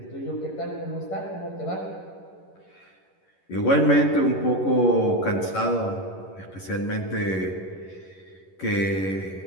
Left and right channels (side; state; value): right; late; 11 ms